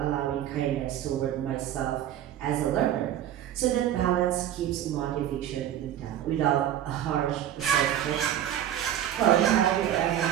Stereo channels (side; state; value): left; quieter; 11.1 dB